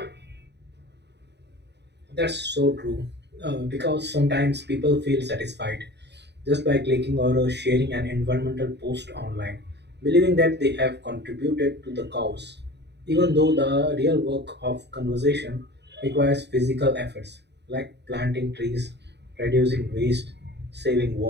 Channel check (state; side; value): late; left; 0.50 ms